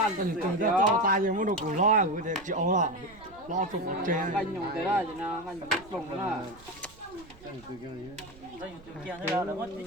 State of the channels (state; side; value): noise; right; rumble, 23 dB below the sound